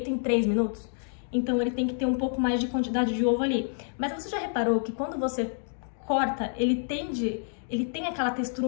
em 3 minutos. Então, ele tem que ter um pouco mais de quantidade de ovo ali. Mas você já reparou que quando você corta, ele tem aquela textura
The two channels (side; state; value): right; silent; digital silence